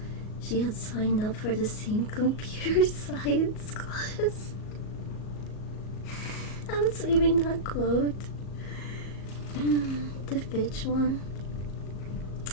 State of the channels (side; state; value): right; late; 38 ms